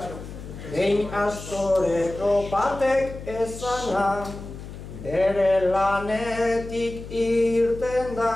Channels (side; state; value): left; noise; hum, 12 dB below the sound